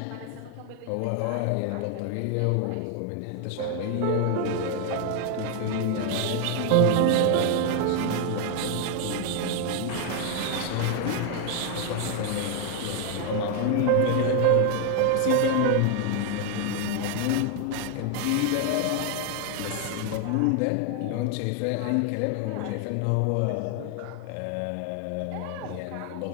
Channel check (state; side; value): different; both; correlation 0.00